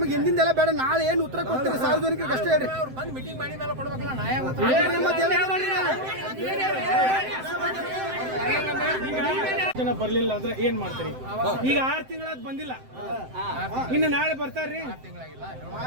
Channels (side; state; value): left; late; 7.7 ms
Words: ಹಿಂದಿಂದೆಲ್ಲ ಬೇಡ. ನಾಳೆ ಏನು ಉತ್ತರ ಕೊಡ್ತೀರಿ ಸಾರ್ವಜನಿಕರಿಗೆ ಅಷ್ಟೇ ಹೇಳ್ರಿ. ಅವ್ರು ಬಂದು ಮೀಟಿಂಗ್ ಮಾಡಿ ಮೇಲೆ ಕೊಡ್ಬೇಕಲ್ಲ. ನಾ ಜನ ಬರ್ಲಿಲ್ಲ ಅಂದ್ರೆ ಏನ್ ಮಾಡ್ತೀರಿ? ಈಗ 6 ತಿಂಗಳಾದ್ ಬಂದಿಲ್ಲ. ಇನ್ನು ನಾಳೆ ಬರ್ತಾರ್ರಿ.